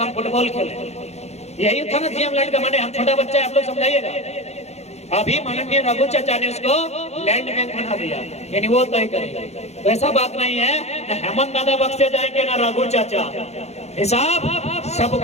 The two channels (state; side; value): late; right; 0.31 ms